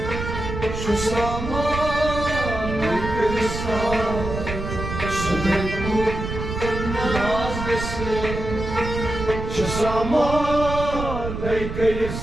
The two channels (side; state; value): right; noise; rumble, 6 dB below the sound